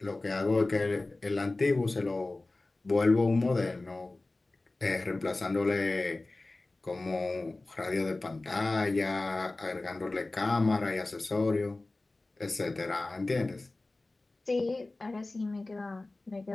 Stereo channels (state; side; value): quieter; right; 3.0 dB